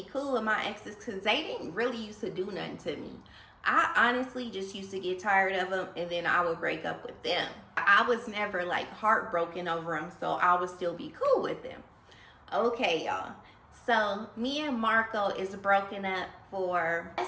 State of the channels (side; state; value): both; identical; correlation 1.00